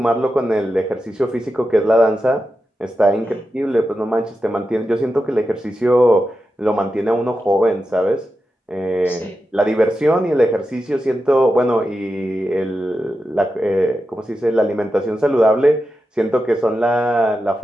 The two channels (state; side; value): normal; both; correlation 0.90